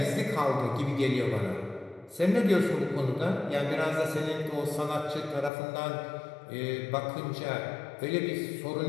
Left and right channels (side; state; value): right; drops out; at 5.5 s